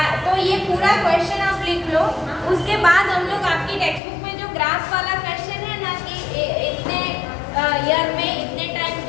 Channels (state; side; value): drops out; right; at 4.0 s